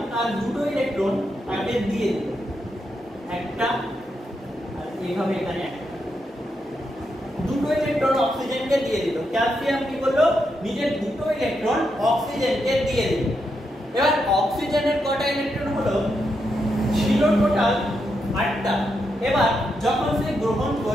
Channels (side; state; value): both; normal; correlation 0.83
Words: তার দুটো ইলেকট্রন তাকে দিয়ে দিল, একটা আর এইভাবে এখানে দুটো ইলেকট্রন অক্সিজেনকে দিয়ে দিল। ক্যালসিয়াম কি করলো? নিজের দুটো ইলেকট্রন অক্সিজেনকে দিয়ে দিল। এবার অক্সিজেনের কটা ইলেকট্রন হলো? ছিল টোটাল 8টা। এবার যখন সে গ্রহণ